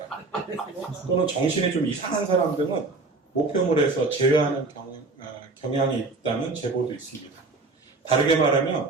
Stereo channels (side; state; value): left; quieter; 3.7 dB